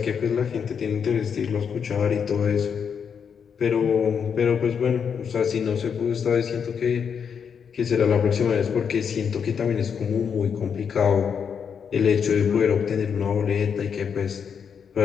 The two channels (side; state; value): right; quieter; 7.0 dB